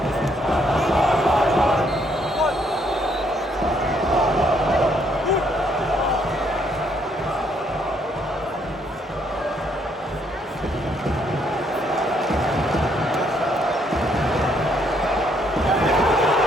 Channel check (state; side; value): normal; both; correlation 0.70